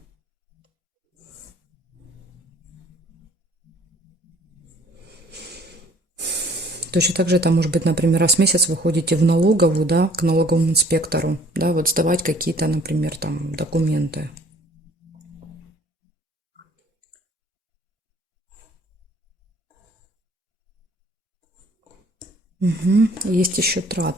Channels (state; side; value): normal; both; correlation 0.56